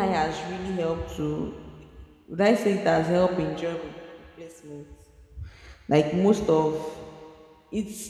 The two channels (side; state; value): both; identical; correlation 1.00